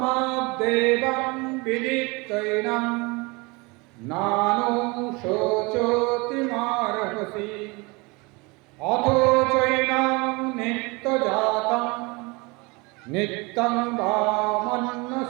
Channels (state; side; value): quieter; left; 26.7 dB